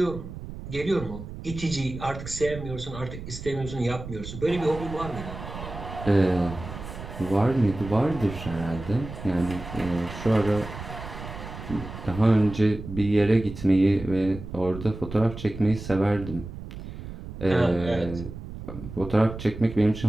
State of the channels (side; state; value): right; noise; rumble, 11 dB below the sound